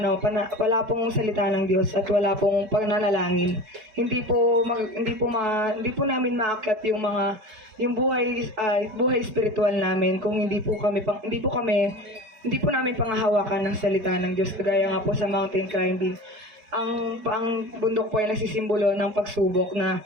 wala pong salita ng Diyos at wala pong pananalangin, hindi po namin maakyat yung buhay spiritual namin kung hindi po namin pangahawakan ng salita ng Diyos. Kagaya nga po sa mountain climbing, ang bundok po ay nagsisimbolo ng pagsubok na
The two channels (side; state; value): left; late; 5.1 ms